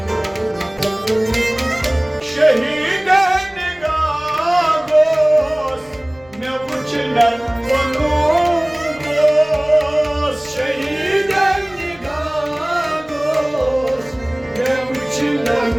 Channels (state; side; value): noise; left; rumble, 27 dB below the sound